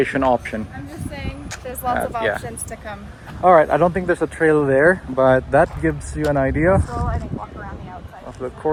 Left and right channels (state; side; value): identical; both; correlation 1.00